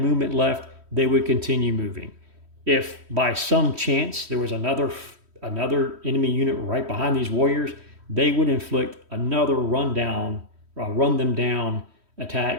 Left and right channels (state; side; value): late; left; 3.1 ms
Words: left, they would continue moving. If by some chance there was another enemy unit right behind these warriors, they would inflict another run them down